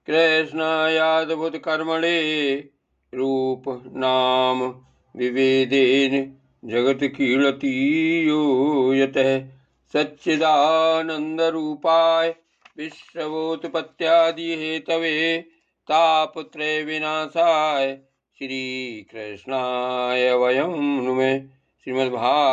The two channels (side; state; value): both; identical; correlation 1.00